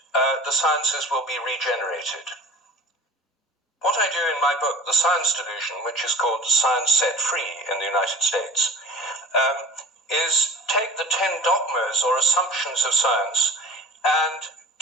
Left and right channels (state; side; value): normal; both; correlation 0.41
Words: the sciences will be regenerated. What I do in my book, The Science Delusion, which is called Science Set Free in the United States, is take the 10 dogmas or assumptions of science and